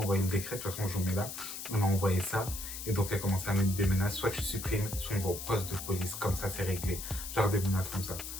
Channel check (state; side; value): noise; left; hiss, 8 dB below the sound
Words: envoyé le décret, de toute façon, je vous mets là. Elle m'a envoyé ça et donc elle commence à mettre des menaces. Soit tu supprimes, soit on va au poste de police. Comme ça, c'est réglé. Genre des menaces comme ça.